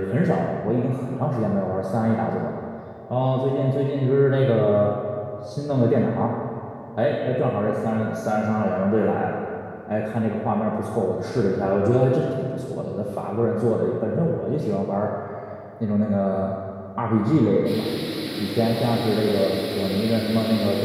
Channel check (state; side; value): identical; both; correlation 1.00